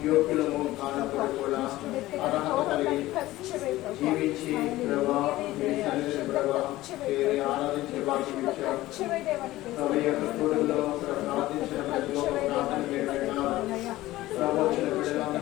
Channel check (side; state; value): right; quieter; 16.9 dB